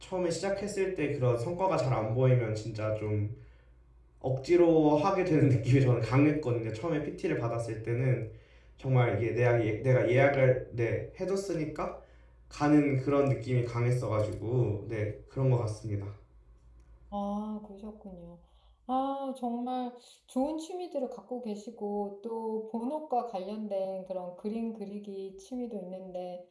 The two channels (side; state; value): both; identical; correlation 1.00